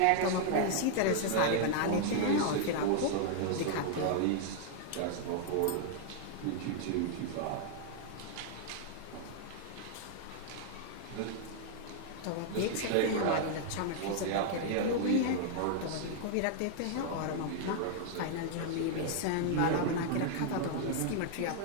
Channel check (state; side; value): different; both; correlation 0.00